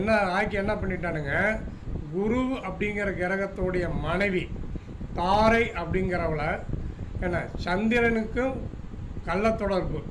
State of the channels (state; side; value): identical; both; correlation 1.00